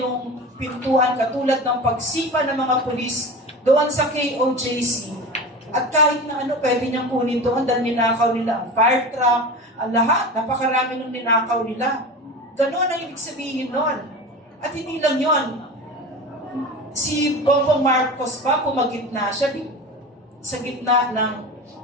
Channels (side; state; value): both; normal; correlation 0.30